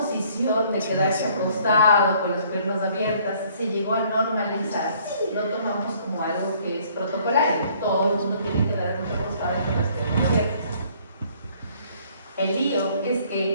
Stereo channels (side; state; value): both; inverted; correlation -0.60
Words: de quedarse acostado con las piernas abiertas se llegó a normalizar, lo tomamos como algo que es protocolario. Todo el mundo tiene que quedarse acostado con las piernas abiertas. El lío es